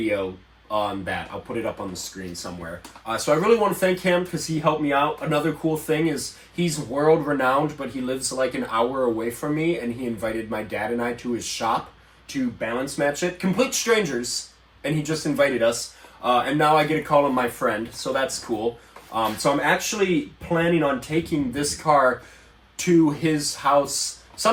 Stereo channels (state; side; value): identical; both; correlation 1.00